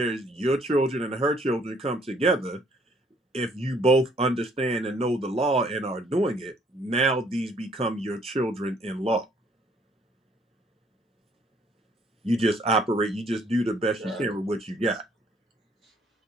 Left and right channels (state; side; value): normal; both; correlation 0.64